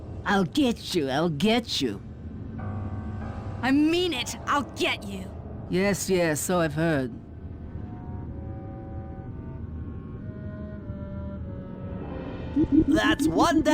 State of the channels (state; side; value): identical; both; correlation 1.00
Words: I'll get you, I'll get you. I mean it! I'll get you! Yes, yes, so I've heard. That's one